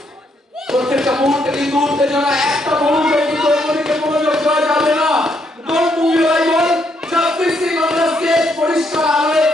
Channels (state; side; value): normal; both; correlation 0.74